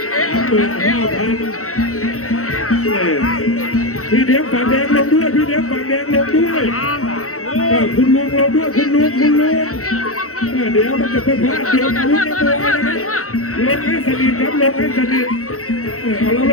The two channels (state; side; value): late; right; 0.64 ms